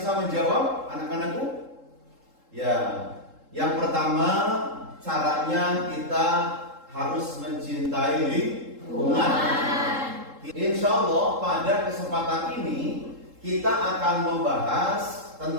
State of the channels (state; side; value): late; left; 3.7 ms